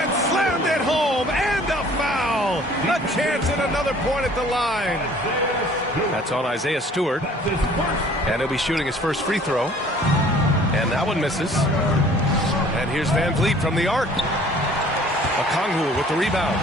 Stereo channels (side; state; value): both; normal; correlation 0.53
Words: slammed it home. And a foul. A chance at another point at the line. That's on Isaiah Stewart. And he'll be shooting his first free throw. And that one misses. And here's Van Vliet from the arc. Okongwu with the rebound.